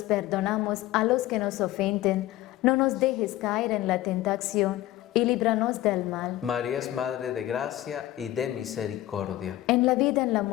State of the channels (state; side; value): quieter; right; 15.2 dB